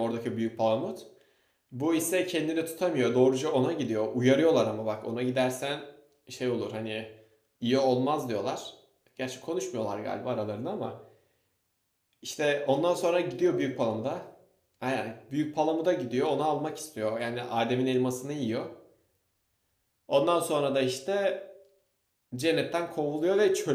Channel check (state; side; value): identical; both; correlation 1.00